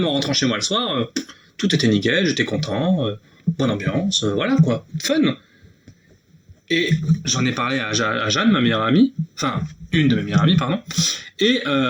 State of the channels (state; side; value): identical; both; correlation 1.00